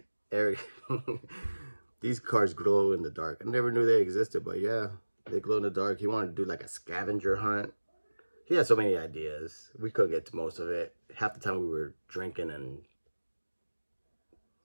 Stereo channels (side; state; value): both; inverted; correlation -1.00